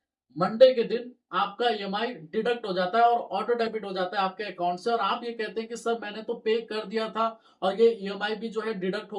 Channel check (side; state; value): both; identical; correlation 1.00